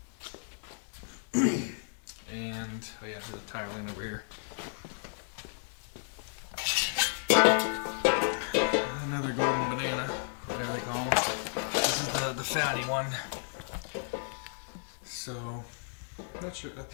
and oh yeah, there's a tire line over here. Another golden banana, whatever they call them. This is the fatty one. So, not sure.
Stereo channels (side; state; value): right; silent; digital silence